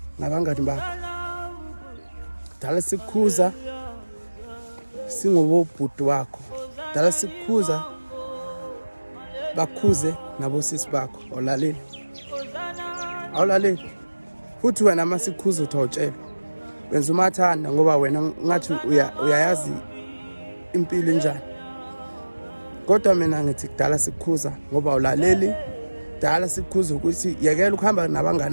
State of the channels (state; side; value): inverted; both; correlation -1.00